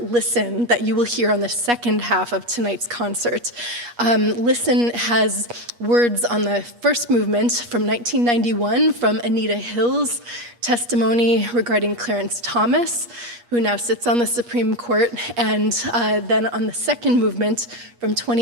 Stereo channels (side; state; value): left; late; 8.4 ms